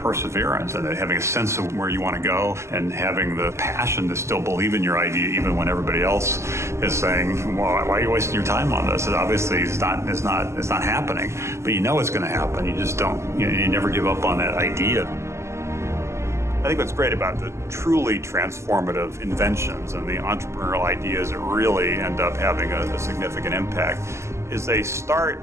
and having a sense of where you want to go and having the passion to still believe in your idea even when everybody else is saying, well, why are you wasting your time on this? And obviously it's not happening, but you know it's going to happen. You just don't, you never give up on that idea. I think what's great about the truly transformative inventions and the entrepreneurial ideas that really end up having a significant impact is they start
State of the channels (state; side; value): late; left; 0.13 ms